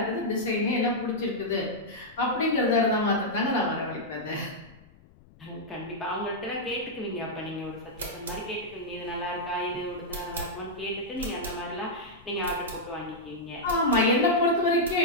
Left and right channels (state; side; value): noise; left; rumble, 25 dB below the sound